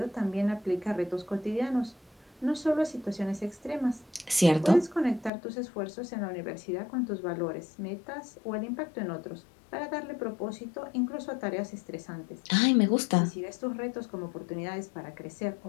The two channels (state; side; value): drops out; right; at 5.3 s